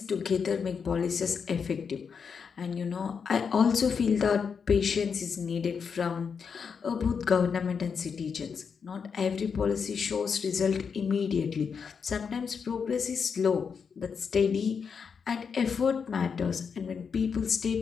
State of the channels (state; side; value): quieter; right; 6.2 dB